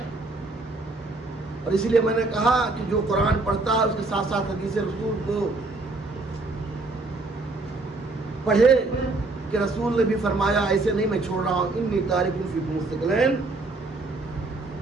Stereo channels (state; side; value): quieter; left; 3.2 dB